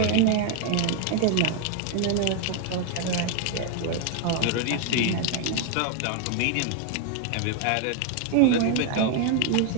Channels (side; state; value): both; different; correlation 0.01